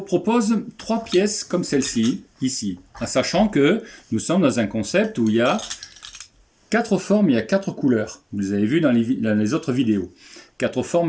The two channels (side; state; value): both; identical; correlation 1.00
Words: 3 pièces comme celle-ci, ici, en sachant que nous sommes dans un concept où il y a 4 formes, il y a 4 couleurs. Vous les avez vu dans les autres vidéos. 4